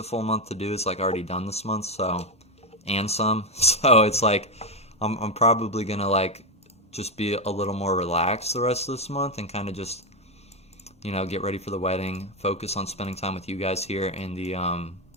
full month to do is like already done this month, so, and some, so it's like I'm probably gonna like just be a little more relaxed the rest of this month and kind of just, you know, get ready for the wedding, focus on spending time with you guys here in the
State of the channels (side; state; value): both; normal; correlation 0.08